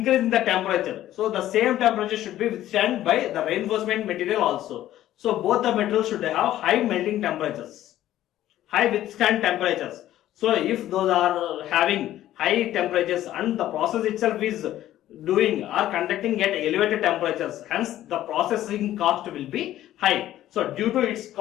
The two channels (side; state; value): right; quieter; 13.3 dB